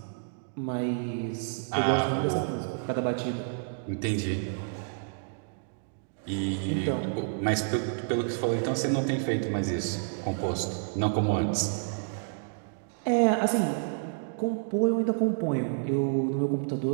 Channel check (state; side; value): silent; left; digital silence